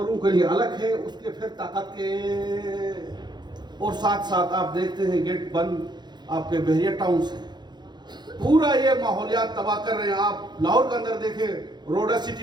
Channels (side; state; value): left; late; 0.21 ms